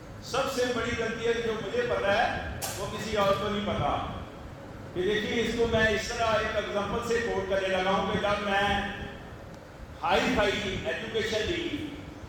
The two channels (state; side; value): identical; both; correlation 1.00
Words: سب سے بڑی غلطی ہے کہ جو مجھے پتا ہے وہ کسی اور کو نہیں پتا۔ کہ دیکھیے اس کو میں اس طرح ایک ایگزامپل سے کوٹ کرنے لگا ہوں کہ جب میں ہائی فائی ایجوکیشن لی